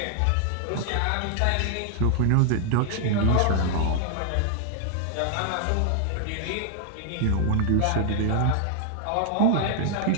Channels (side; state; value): both; different; correlation 0.00